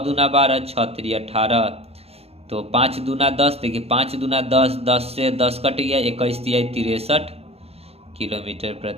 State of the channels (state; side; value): late; left; 0.29 ms